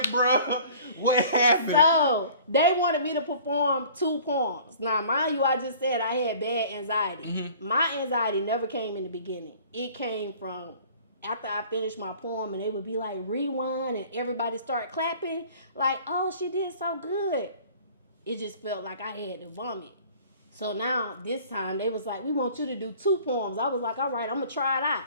bro. What happened? So, they wanted me to perform 2 poems. Now, mind you, I just said I had bad anxiety. My anxiety never came in the beginning. It came from after I finished my poem, and they would be like, rewind, and everybody start clapping, like, oh, she did so good. It just felt like I had to vomit. So now, this time, they was like, we want you to do 2 poems. I was like, all right, I'm going to try it out.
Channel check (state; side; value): inverted; both; correlation -0.48